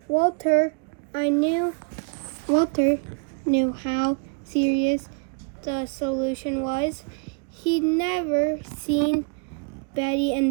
Walter knew how serious the solution was. He'd never seen Betty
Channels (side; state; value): left; quieter; 35.3 dB